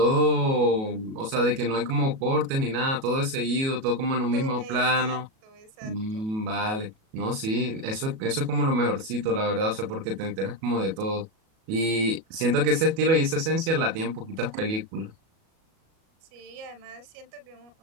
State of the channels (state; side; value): late; left; 37 ms